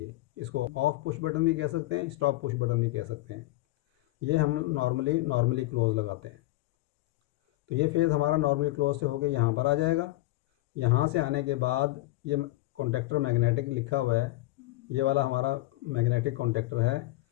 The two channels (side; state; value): right; quieter; 18.8 dB